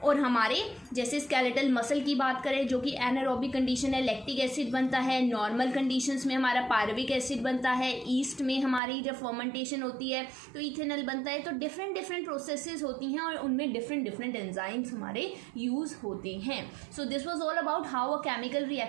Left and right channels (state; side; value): drops out; left; at 8.8 s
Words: और हमारे जैसे स्केलेटल मसल की बात करें जो कि एनारोबिक कंडीशन है, लैक्टिक एसिड बनता है। नॉर्मल कंडीशंस में हमारा पायरुविक एसिड बनता है। ईस्ट में हमारी जब फर्मेंटेशन होती है तो इथेनॉल बनता है। तो डिफरेंट प्रोसेसेस होती हैं और उनमें डिफरेंट एंजाइम्स हमारे यूज होते हैं। So this was all about how a chemical